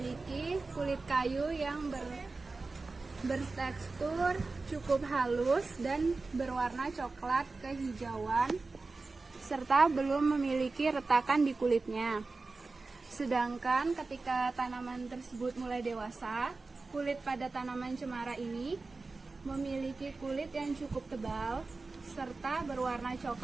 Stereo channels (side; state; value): left; quieter; 3.7 dB